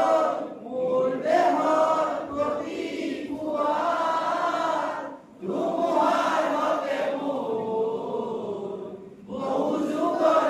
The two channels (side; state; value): both; identical; correlation 1.00